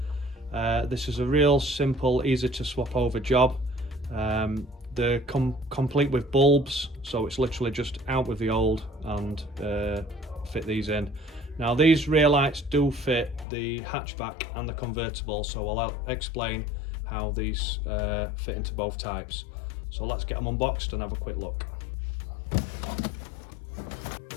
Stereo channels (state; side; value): drops out; right; at 13.5 s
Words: This is a real simple, easy to swap over job. They're complete with bulbs, so it's literally just out with the old and fit these in. Now these rear lights do fit the hatchback and the convertible, so I'll explain how these fit into both types. So let's get them unboxed and have a quick look.